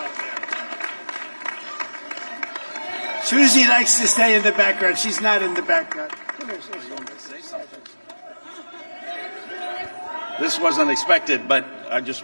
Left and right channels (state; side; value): inverted; both; correlation -1.00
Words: Susie likes to stay in the background. She's not in the background. Come here, Susie. This was unexpected, but I